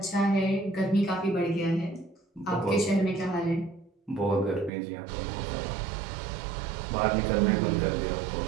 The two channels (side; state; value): left; drops out; at 4.7 s